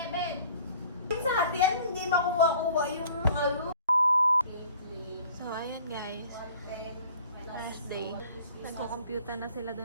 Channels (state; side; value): inverted; both; correlation -0.52